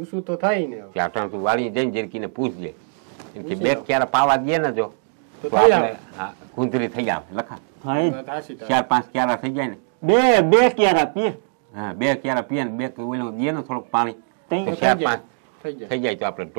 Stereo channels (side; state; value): left; silent; digital silence